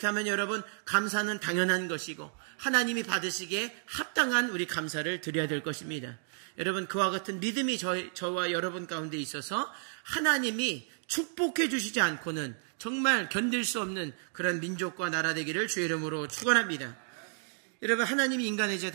여러분 감사는 당연한 것이고 하나님이 받으시기에 합당한 우리 감사를 드려야 될 것입니다. 여러분 그와 같은 믿음이 저와 여러분 가운데 있어서 하나님이 축복해 주시지 않고는 정말 견딜 수 없는 그런 민족과 나라 되기를 주의 이름으로 축원합니다. 여러분 하나님이 인간의 죄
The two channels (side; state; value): left; silent; digital silence